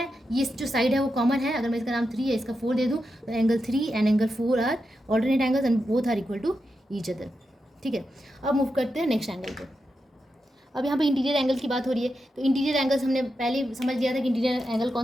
ये जो साइड है वो कॉमन है। अगर मैं इसका नाम 3 है, इसका 4 दे दूँ तो angle 3 and angle 4 are alternate angles and both are equal to each other, ठीक है। अब मूव करते हैं नेक्स्ट एंगल पे। अब यहाँ पे इंटीरियर एंगल की बात हो रही है तो इंटीरियर एंगल्स हमने पहले समझ लिया था कि इंटीरियर एंगल कौन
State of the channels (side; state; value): both; normal; correlation 0.88